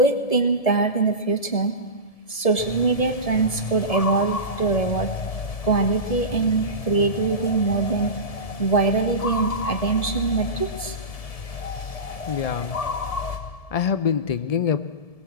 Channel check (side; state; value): right; late; 1.7 ms